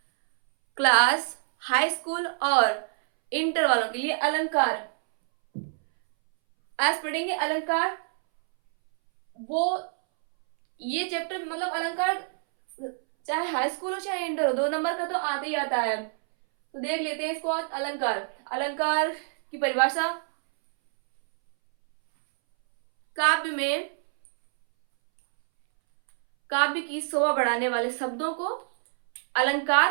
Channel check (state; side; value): silent; left; 61 dB below the other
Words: क्लास, हाई स्कूल और इंटर वालों के लिए अलंकार। आज पढ़ेंगे अलंकार। वो ये चैप्टर मतलब अलंकार चाहे हाई स्कूल हो चाहे इंटर हो, 2 नंबर का तो आता ही आता है। तो देख लेते हैं इसको। आज अलंकार, अलंकार की परिभाषा। काव्य की शोभा बढ़ाने वाले शब्दों को